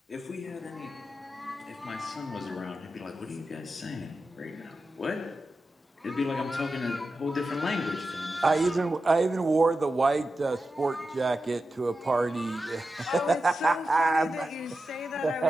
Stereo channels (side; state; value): both; normal; correlation 0.91